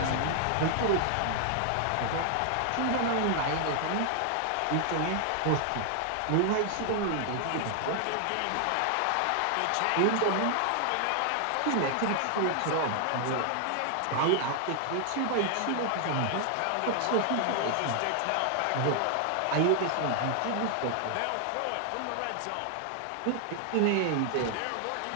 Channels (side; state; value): both; different; correlation 0.00